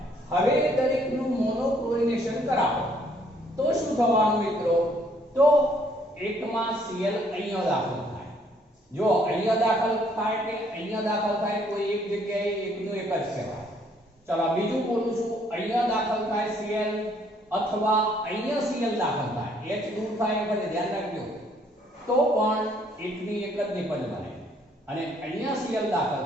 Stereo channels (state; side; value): normal; both; correlation 0.65